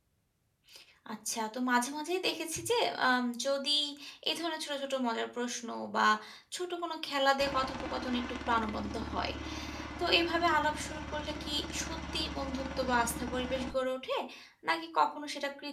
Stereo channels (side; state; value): both; identical; correlation 1.00